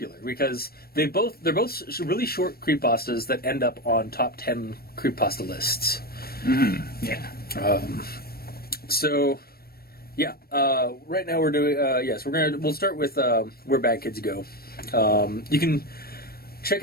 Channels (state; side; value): late; right; 0.44 ms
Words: because they're both really short creepypastas that end up on top 10 creepypasta lists. Mm-hmm. Yeah. So, yeah. Right now we're doing we'll start with Where Bad Kids Go. You can check